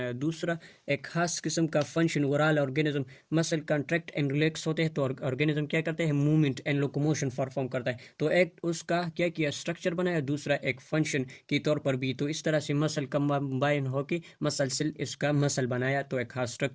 दूसरा एक खास किस्म का function, overall organism muscle contract and relax होते हैं, तो ऑर्गेनिज्म क्या करते हैं, मूवमेंट एंड लोकोमोशन परफॉर्म करता है। तो एक उसका क्या किया, स्ट्रक्चर बनाया, दूसरा एक फंक्शन के तौर पर भी। तो इस तरह से मसल कंबाइन होके मसल सेल इसका मसल बनाया, तो एक खास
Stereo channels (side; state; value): both; identical; correlation 1.00